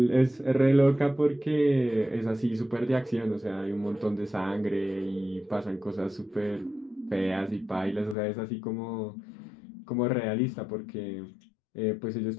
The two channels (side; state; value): right; drops out; at 8.2 s